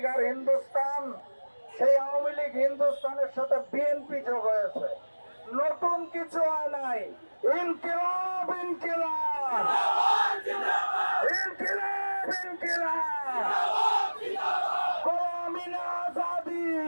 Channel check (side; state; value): both; inverted; correlation -1.00